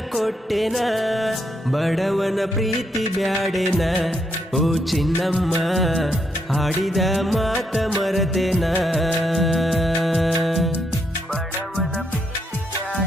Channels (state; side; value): normal; both; correlation 0.77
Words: ಕೊಟ್ಟೆನ ಬಡವನ ಪ್ರೀತಿ ಬ್ಯಾಡೆನ ಓ ಚಿನ್ನಮ್ಮ ಹಾಡಿದ ಮಾತ ಮರತೇನ